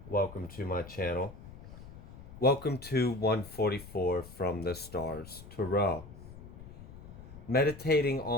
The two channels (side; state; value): left; noise; rumble, 16 dB below the sound